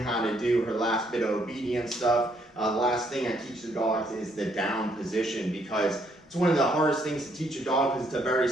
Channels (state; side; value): normal; both; correlation 0.70